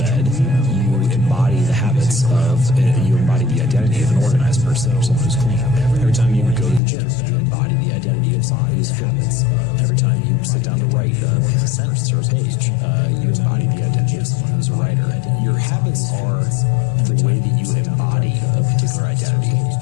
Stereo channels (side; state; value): right; drops out; at 6.8 s